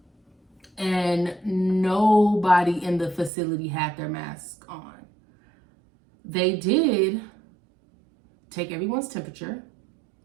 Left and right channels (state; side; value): drops out; left; at 3.3 s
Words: And nobody in the facility had their mask on. They did take everyone's temperature.